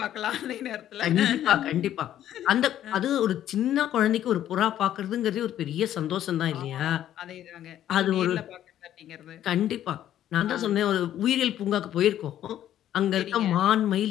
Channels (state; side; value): quieter; right; 11.6 dB